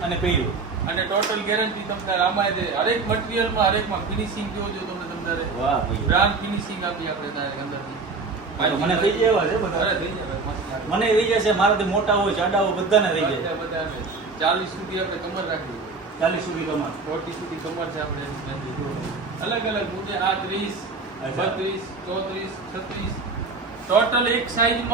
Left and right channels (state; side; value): quieter; left; 4.1 dB